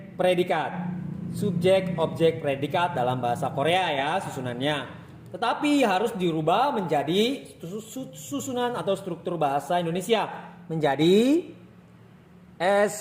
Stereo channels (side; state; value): both; identical; correlation 1.00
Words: predikat. Subjek, objek, predikat dalam bahasa Korea ya susunannya. Tetapi harus dirubah menjadi susunan atau struktur bahasa Indonesia menjadi